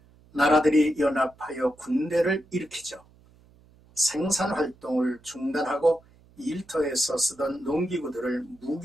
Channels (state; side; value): noise; right; hum, 28 dB below the sound